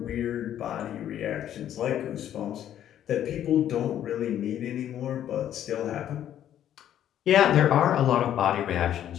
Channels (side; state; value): right; quieter; 10.9 dB